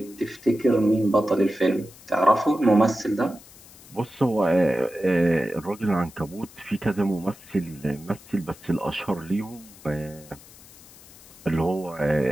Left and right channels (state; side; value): noise; left; hiss, 22 dB below the sound